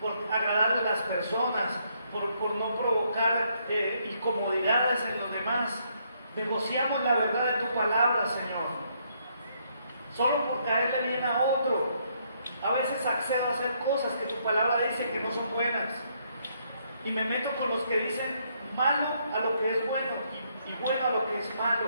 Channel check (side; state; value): both; inverted; correlation -0.72